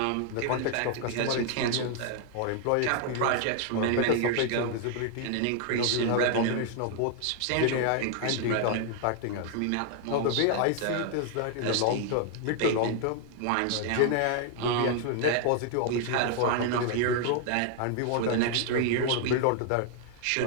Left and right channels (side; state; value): both; different; correlation 0.00